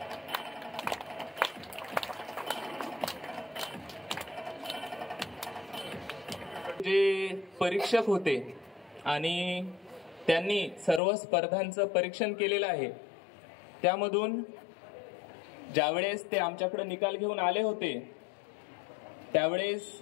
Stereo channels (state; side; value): drops out; right; at 11.0 s